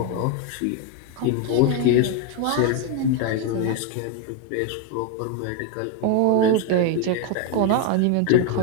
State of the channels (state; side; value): different; both; correlation 0.01